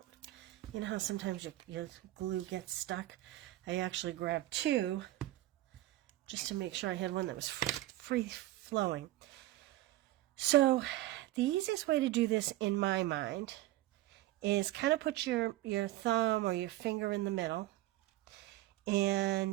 You know how sometimes your glue gets stuck? I actually grabbed 2 just to make sure I had one that was free flowing. So the easiest way to do this in my mind is kind of put your thumb or your finger in the middle,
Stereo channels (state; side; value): quieter; left; 16.4 dB